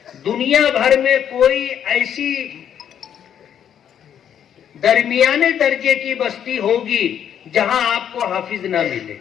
دنیا بھر میں کوئی ایسی درمیانے درجے کی بستی ہوگی جہاں آپ کو حافظ نہ ملے۔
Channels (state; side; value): quieter; right; 9.2 dB